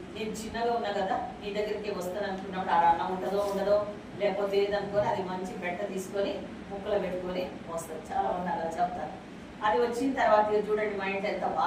నేను చిన్నగా ఉన్నా కదా నీ దగ్గరికి వస్తాను అనుకున్నప్పుడు ఆడ అన్నం ఉంటుందో ఉండదో లేకపోతే ఏదనుకొని అది మంచి పెట్ట తీసుకొని ముక్కలు పెట్టుకొని వస్తుంది. చాలా మంది అలా చెప్తారు. అది వచ్చిన తర్వాత చూడండి మా ఇంట్లో ఎంత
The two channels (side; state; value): both; identical; correlation 1.00